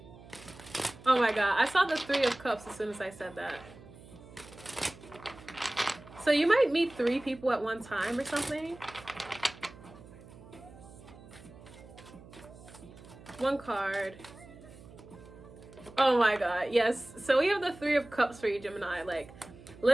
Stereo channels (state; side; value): noise; right; hum, 19 dB below the sound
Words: Oh my god, I saw the Three of Cups as soon as I said that. So you might meet 3 people at one time or something. One card. Oh my god, yes. So we have the Three of Cups for you, Gemini. Like,